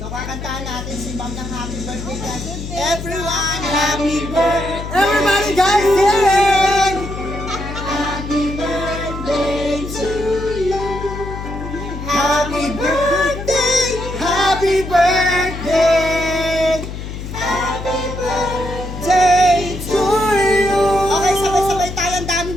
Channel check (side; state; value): left; noise; hum, 8 dB below the sound